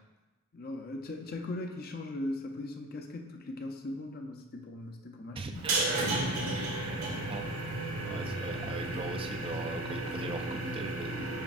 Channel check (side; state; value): both; normal; correlation 0.37